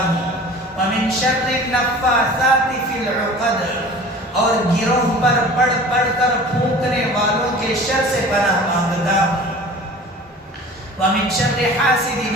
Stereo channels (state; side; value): normal; both; correlation 0.42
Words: ومن شر النفاثات فی العقد، اور گروہ پر پڑھ پڑھ کر پھونکنے والوں کے شر سے پناہ مانگتا ہوں، ومن شر حاسد